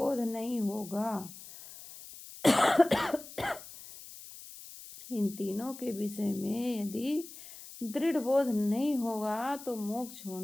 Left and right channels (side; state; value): left; noise; hiss, 15 dB below the sound